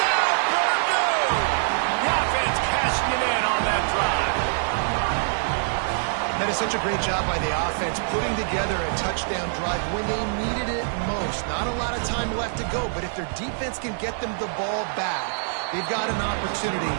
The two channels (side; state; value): left; silent; digital silence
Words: That is such a great job by the offense, putting together a touchdown drive when they needed it most. Not a lot of time left to go, but if their defense can get them the ball back, they've got an opportunity